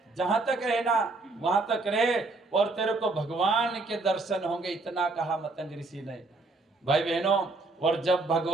जहां तक रहना वहां तक रहे, और तेरे को भगवान के दर्शन होंगे, इतना कहा मतंग ऋषि ने। भाई बहनों, और जब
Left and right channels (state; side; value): quieter; left; 3.3 dB